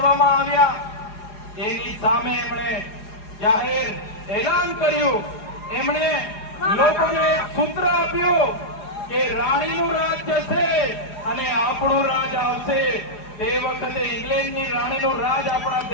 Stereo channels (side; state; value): right; late; 4.8 ms